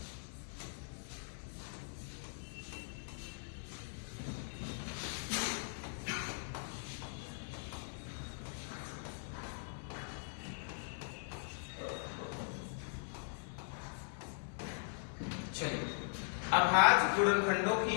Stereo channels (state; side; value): silent; right; 51 dB below the other